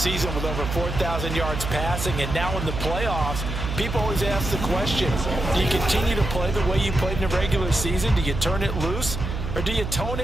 with over 4,000 yards passing, and now in the playoffs, people always ask the question, do you continue to play the way you played in the regular season? Do you turn it loose, or do you tone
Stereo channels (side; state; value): right; noise; hum, 5 dB below the sound